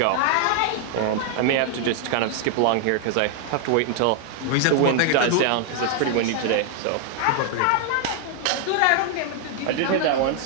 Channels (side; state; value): both; different; correlation 0.00